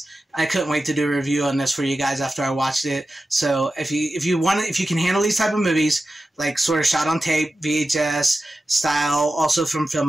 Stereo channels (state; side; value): normal; both; correlation 0.93